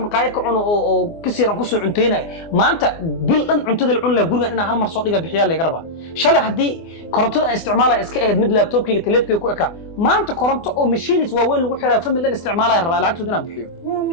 maqaayad ka cuno oo kasiiran ku soo cunteynay maanta bil dhan cuntada la cun la gurigan inaan hal mar soo dhiga bixiyaa laga rabaa shalay haddii korontada aan isticmaalay iska ahayd mid laptopkayga telefonkayga ku eka maanta koronto oo machines waaweyn lagu xiraa family dhan isticmaalaya rabaa lacagtooda inaan bixiyo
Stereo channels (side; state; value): right; late; 24 ms